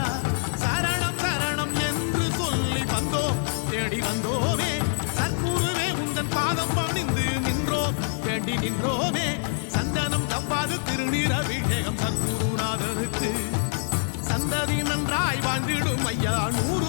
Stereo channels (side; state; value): right; silent; digital silence